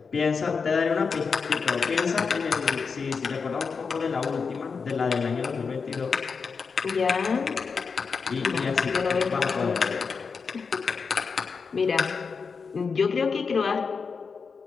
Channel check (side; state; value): right; quieter; 5.3 dB